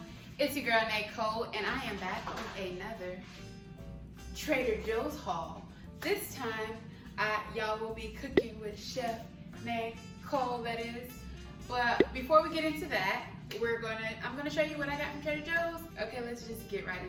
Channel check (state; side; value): identical; both; correlation 1.00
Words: It's your girl Nicole, and I am back with another Trader Joe's haul. This time, y'all will be cooking with Chef Nicole, that is. But before we get into that, I'm gonna show you what I got from Trader Joe's. Okay, let's just get right